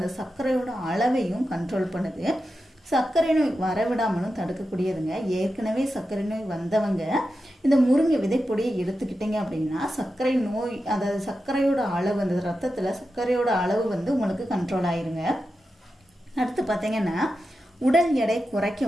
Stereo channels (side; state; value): both; normal; correlation 0.90